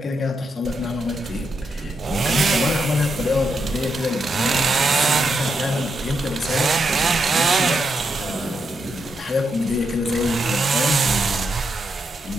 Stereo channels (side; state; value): both; normal; correlation 0.82